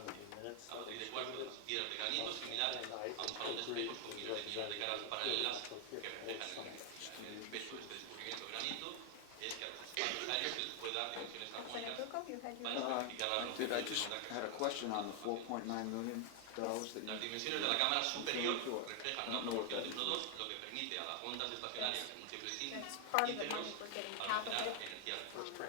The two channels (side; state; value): both; different; correlation 0.00